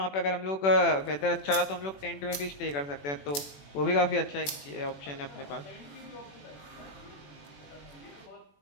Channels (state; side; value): late; right; 21 ms